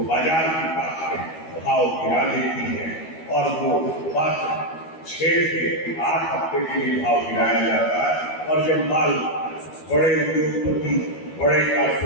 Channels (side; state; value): right; late; 12 ms